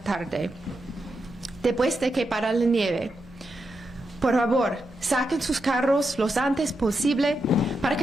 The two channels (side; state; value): right; noise; hum, 29 dB below the sound